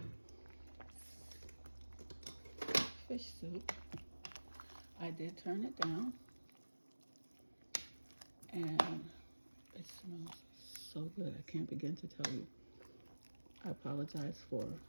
fish soup. I did turn it down, and it smells so good. I can't begin to tell you. I apologize for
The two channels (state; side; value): inverted; both; correlation -1.00